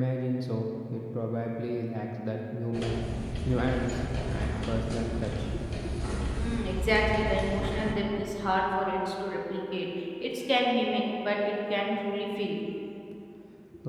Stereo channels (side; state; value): both; identical; correlation 1.00